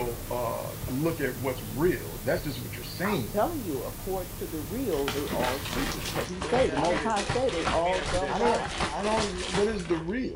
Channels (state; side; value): identical; both; correlation 1.00